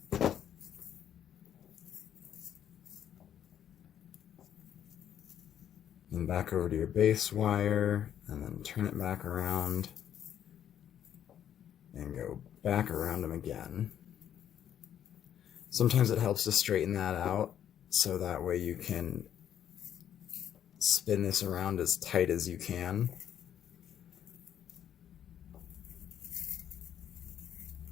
And back over to your base wire, and then turn it back around and go back around them again. Sometimes it helps to straighten that out so that way you can spin this around as tight as you can.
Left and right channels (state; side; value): quieter; right; 9.9 dB